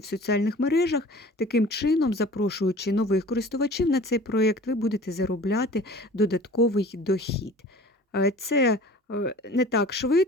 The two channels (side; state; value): both; normal; correlation 0.44